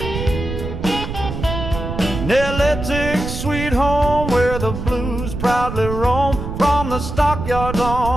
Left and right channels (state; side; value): noise; right; rumble, 6 dB below the sound